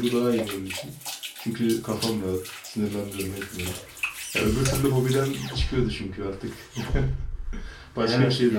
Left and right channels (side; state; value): both; identical; correlation 1.00